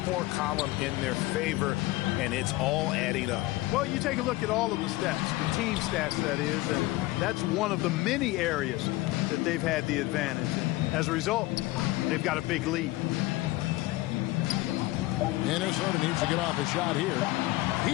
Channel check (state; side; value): quieter; right; 19.1 dB